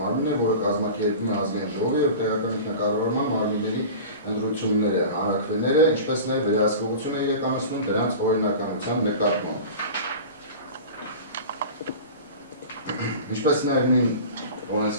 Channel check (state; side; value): inverted; both; correlation -0.35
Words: է, որը կազմակերպում է ազգային ժողովի և տեղական ինքնակառավարման մարմինների ընտրությունները, հանրաքվեները, ինչպես նաև վերահսկողություն է իրականացնում դրանց օրինականության նկատմամբ։ Ինչպես նաև նույն